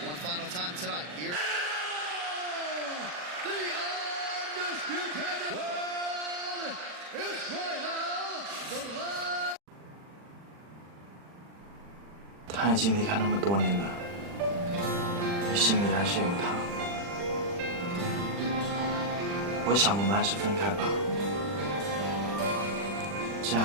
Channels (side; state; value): left; late; 40 ms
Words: One final time tonight. Here. The undisputed world Israel, the last. 他已经离开那么多年了，你心里还是有他。我想我们还是分开吧，这